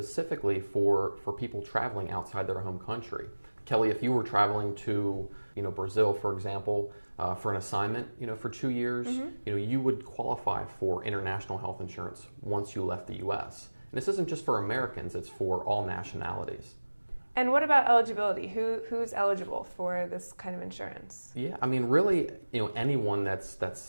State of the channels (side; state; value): both; inverted; correlation -1.00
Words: for people traveling outside their home country. Kelly, if you were traveling to Brazil, for example, for an assignment, for 2 years, you would qualify for international health insurance once you left the U.S. And this isn't just for Americans; it's for all nationalities. And what about eligibility? Who's eligible for this kind of insurance? Yeah, I mean, really, anyone that's